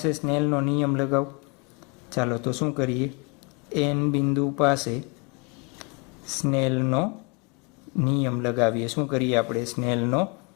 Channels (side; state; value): right; quieter; 31.7 dB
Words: સ્નેલનો નિયમ લગાવું. ચાલો તો શું કરીએ? એન બિંદુ પાસે સ્નેલનો નિયમ લગાવીએ. શું કરીએ આપણે? સ્નેલનો